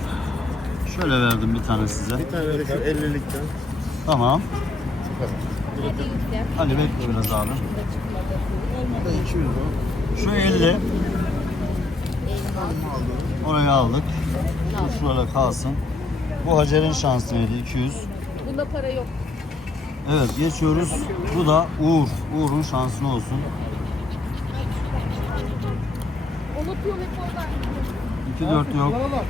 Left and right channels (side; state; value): right; quieter; 3.2 dB